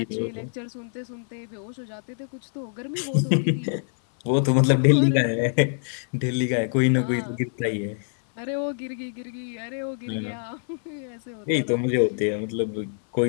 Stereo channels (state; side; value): silent; right; 58 dB below the other